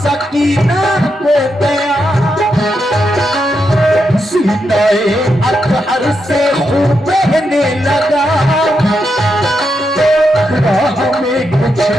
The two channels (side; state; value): both; normal; correlation 0.84